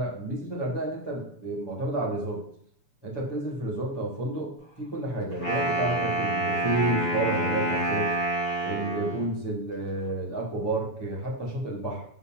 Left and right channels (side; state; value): right; late; 6.9 ms